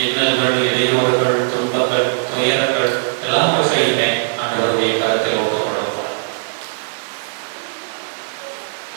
இன்னல்கள், இடையூறுகள், துன்பங்கள், துயரங்கள் எல்லாவற்றையுமே ஆண்டவருடைய கருத்தில் ஒப்புக் கொடுப்பார்.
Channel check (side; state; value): left; silent; 60 dB below the other